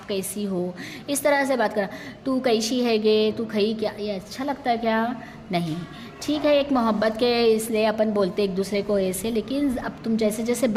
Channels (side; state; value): both; identical; correlation 1.00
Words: कैसी हो? इस तरह से बात करना। तू कैसी है गे? तू खई क्या? ये अच्छा लगता है क्या? नहीं, ठीक है, एक मोहब्बत के इसलिए अपन बोलते एक दूसरे को ऐसे, लेकिन अब तुम जैसे जैसे